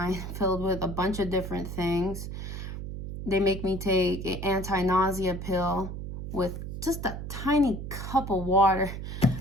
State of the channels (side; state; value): right; noise; hum, 7 dB below the sound